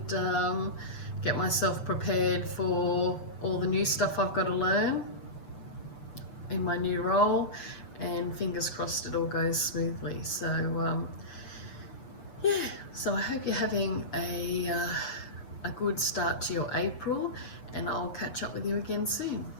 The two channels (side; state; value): right; late; 7.0 ms